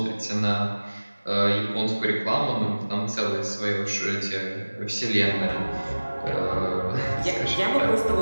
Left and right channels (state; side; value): inverted; both; correlation -1.00